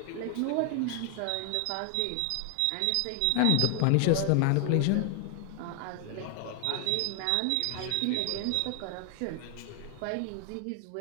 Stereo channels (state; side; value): different; both; correlation 0.00